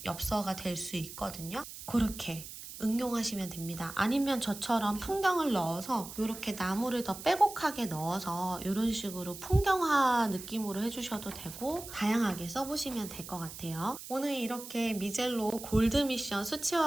엽서가 될 수 있거든요. 그렇게 응용하시면 됩니다. 아니면 저처럼 풍경을 넣어서 이렇게 나무를 더 빼곡하게 넣어서 이런 식으로 풍경화 느낌으로 해주셔도 되고 다양하게 써보시면 될 것 같아요. 오늘 이렇게 미젤로 골드 미션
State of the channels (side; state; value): right; noise; hiss, 12 dB below the sound